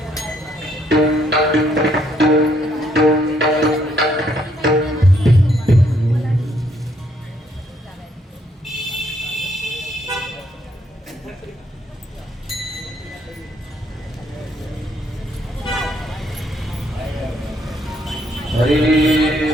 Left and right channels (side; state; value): both; normal; correlation 0.70